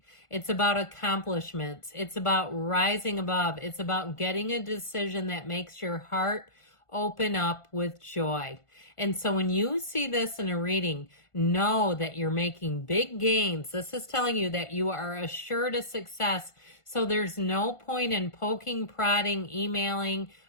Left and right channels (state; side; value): late; right; 1.5 ms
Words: It's about accomplishments. It's about rising above. It's about getting a decision that makes your heart open up with joy. And so when you see this in a reading, know that you're making big gains. This is telling you that you are assured of success. So there's no point in poking, prodding, emailing,